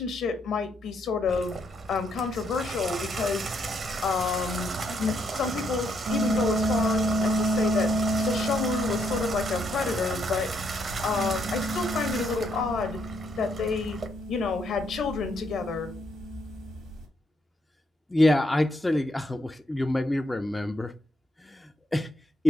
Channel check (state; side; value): normal; both; correlation 0.74